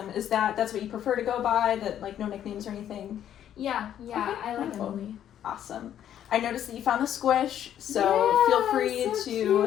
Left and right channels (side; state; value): right; quieter; 10.5 dB